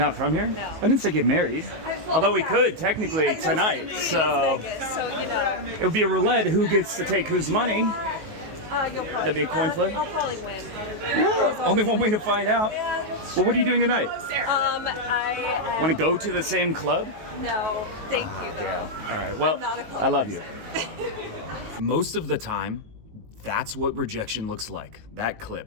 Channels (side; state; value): left; late; 19 ms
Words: from here? No. I didn't say get married. Although we could technically tonight, so So, it would be a roulette. Who gets to take whose money? you'll probably. That'd be a coin flip? I'll probably win. Well, only one way to find out. Well, what are you doing tonight? I Want to go to the same club? no, thank you. Damn. All right. Well, Not a club I love you. person. Most of the time, that's what rejection looks like. That